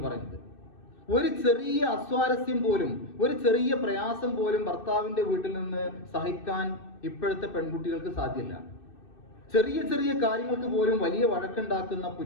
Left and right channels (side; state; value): right; late; 2.6 ms